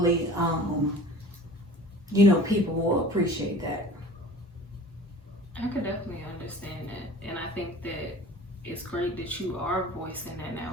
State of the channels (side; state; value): both; normal; correlation 0.43